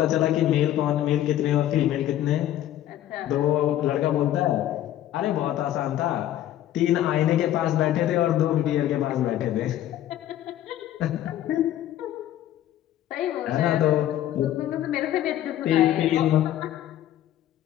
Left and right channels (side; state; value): right; quieter; 12.4 dB